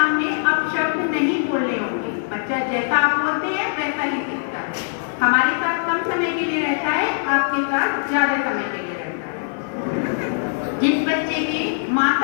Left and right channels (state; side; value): silent; right; digital silence